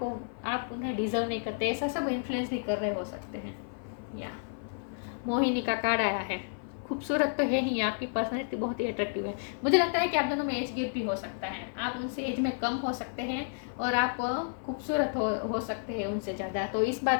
उन्हें डिजर्व नहीं करते, ऐसा सब इन्फ्लुएंस भी कर रहे हो सकते हैं। या मोहिनी का कार्ड आया है, खूबसूरत तो है ही, आपकी पर्सनैलिटी बहुत ही अट्रैक्टिव है। मुझे लगता है कि आप दोनों में एज गैप भी हो सकता है, आप उनसे एज में कम हो सकते हैं और आप खूबसूरत हो सकते हैं उनसे ज़्यादा, तो इस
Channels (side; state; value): right; silent; 57 dB below the other